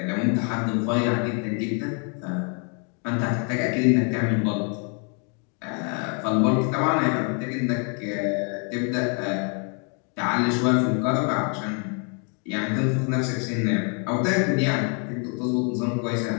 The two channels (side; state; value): right; quieter; 39.6 dB